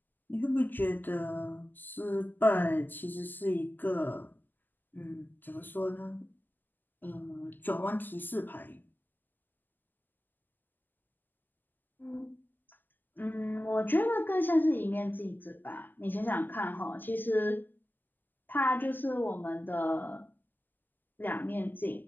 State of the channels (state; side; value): late; right; 0.088 ms